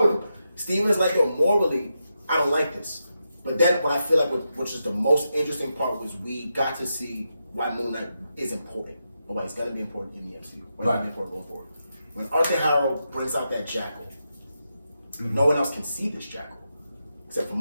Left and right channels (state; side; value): inverted; both; correlation -0.86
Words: with him. Steven's like, yo, morally, I don't like this. But then what I feel like, which is the most interesting part, was we got to see why MoonKnight is important, or why he's going to be important in the MCU. Why he's going to be important going forward. When Arthur Harrow brings out that jackal, no one else can see this jackal except for